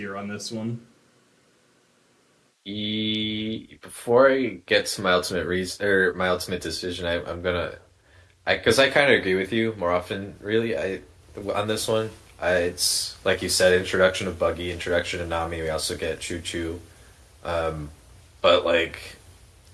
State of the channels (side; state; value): both; identical; correlation 1.00